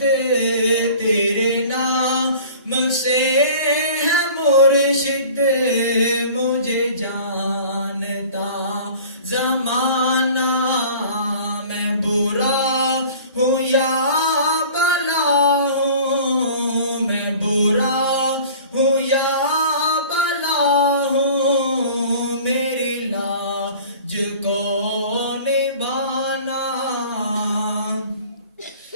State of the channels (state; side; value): inverted; both; correlation -0.45